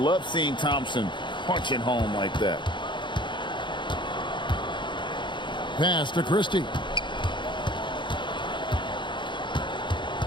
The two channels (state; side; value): late; right; 0.23 ms